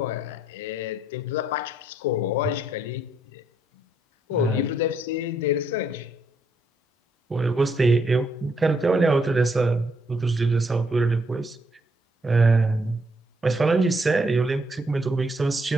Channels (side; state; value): both; normal; correlation 0.73